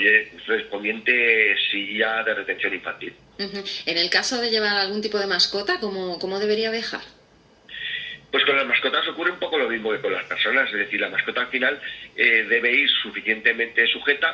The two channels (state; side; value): identical; both; correlation 1.00